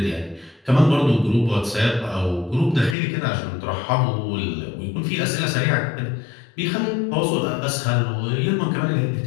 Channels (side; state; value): right; drops out; at 3.0 s